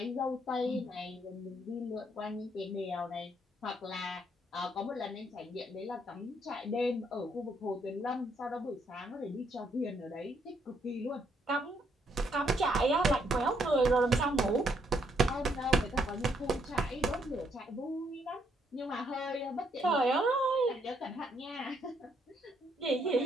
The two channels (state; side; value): normal; both; correlation 0.72